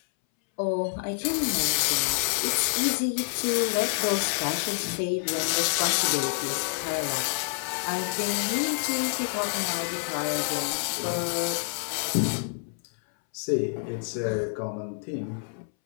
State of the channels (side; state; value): right; silent; 60 dB below the other